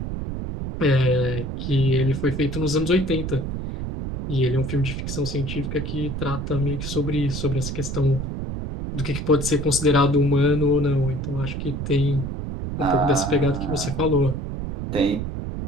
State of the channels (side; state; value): right; noise; rumble, 5 dB below the sound